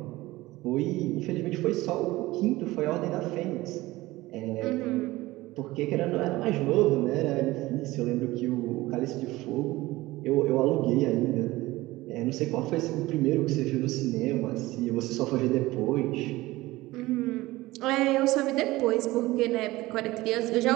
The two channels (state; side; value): quieter; left; 18.8 dB